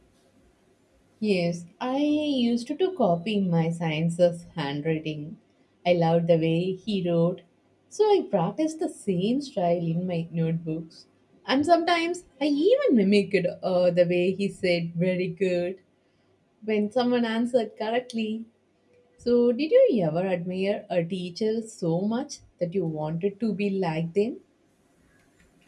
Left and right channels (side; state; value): both; identical; correlation 1.00